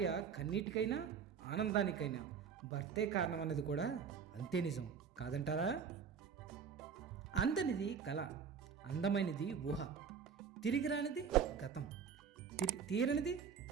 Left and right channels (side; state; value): left; quieter; 6.8 dB